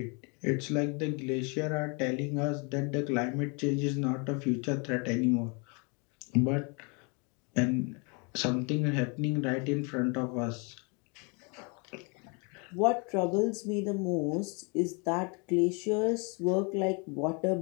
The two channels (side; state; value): right; quieter; 33.3 dB